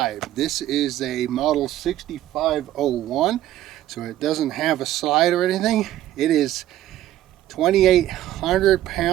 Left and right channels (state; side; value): quieter; left; 13.4 dB